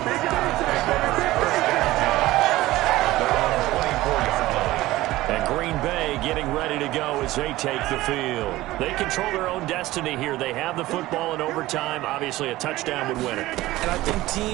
And Green Bay getting ready to go as they take the field. They control their own destiny here. They have the football in overtime. Obviously, a touchdown would win it. And I think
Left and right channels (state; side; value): quieter; left; 17.3 dB